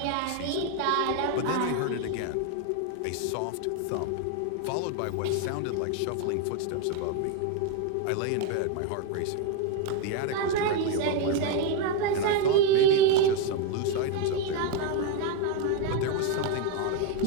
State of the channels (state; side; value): different; both; correlation 0.02